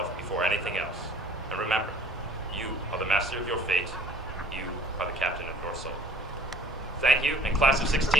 before anything else. And remember, you are the master of your fate. You are the captain of your soul. Thank you, and class of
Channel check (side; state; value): both; normal; correlation 0.54